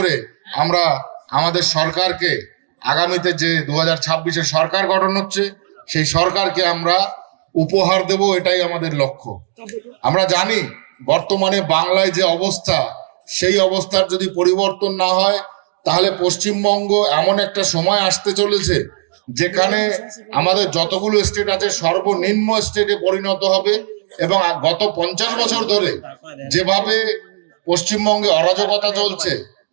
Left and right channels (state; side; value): silent; left; 68 dB below the other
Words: আমরা আমাদের সরকারকে আগামীতে যে 2026-এ সরকার গঠন হচ্ছে সেই সরকারকে আমরা উপহার দেব, এটাই আমাদের লক্ষ্য। আমরা জানি বর্তমানে বাংলায় যে অবস্থা, সেই অবস্থার যদি পরিবর্তন না হয় তাহলে পশ্চিমবঙ্গ এমন একটা সময় আসতে চলেছে যেখানে আমাদের যতগুলো স্টেট আছে সর্বনিম্ন স্টেটে পরিণত হবে। এবং গত 50 বছর ধরে যেভাবে পশ্চিমবঙ্গে অরাজকতা চলছে,